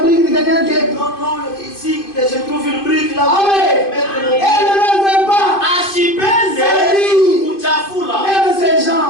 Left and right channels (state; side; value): late; right; 2.5 ms